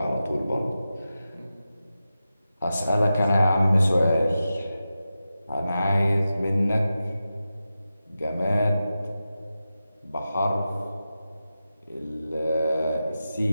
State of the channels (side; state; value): both; inverted; correlation -0.92